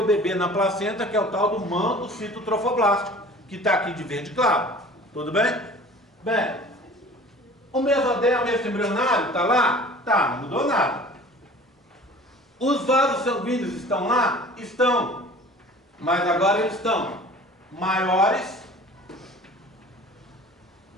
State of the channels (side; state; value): both; normal; correlation 0.45